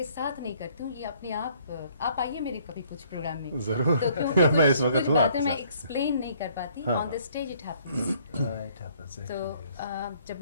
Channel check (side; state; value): both; inverted; correlation -0.62